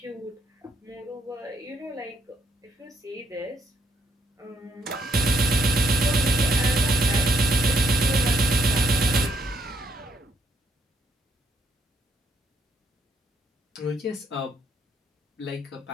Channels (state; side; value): normal; both; correlation 0.72